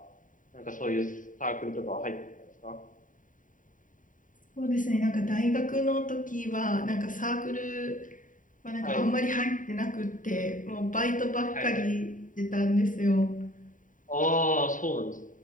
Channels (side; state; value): right; late; 0.38 ms